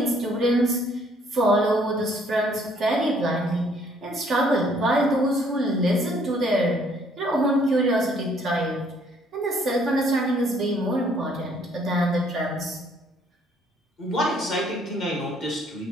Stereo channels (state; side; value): normal; both; correlation 0.63